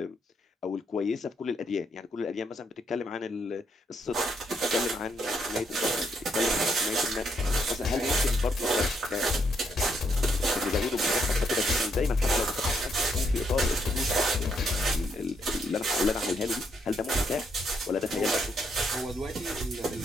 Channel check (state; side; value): normal; both; correlation 0.76